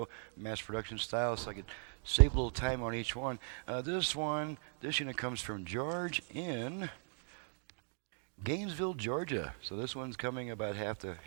mass production style, so I could save a little time on each one. This unit comes from George in Gainesville, Georgia. So this one's coming about half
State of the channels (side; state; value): left; silent; 52 dB below the other